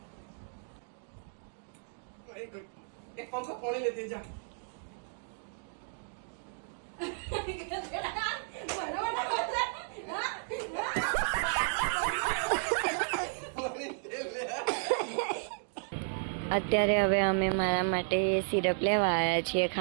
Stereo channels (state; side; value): silent; left; digital silence